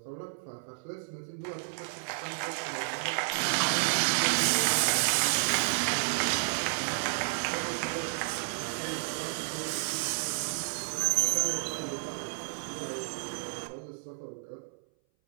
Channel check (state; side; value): silent; left; 57 dB below the other